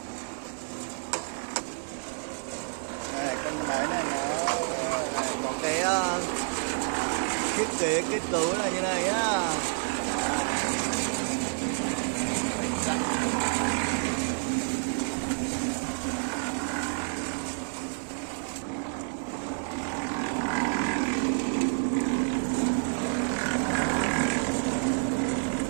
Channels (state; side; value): silent; left; digital silence